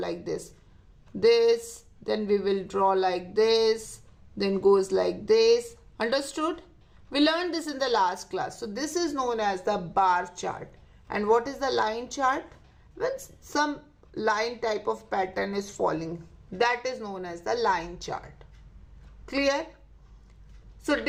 this. This, then we will draw like this, then goes like this. Understood? We learned this in the last class. So this is known as the bar chart. And what is the line chart? When some line type of pattern is falling, that is known as the line chart. Clear? So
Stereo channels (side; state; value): both; identical; correlation 1.00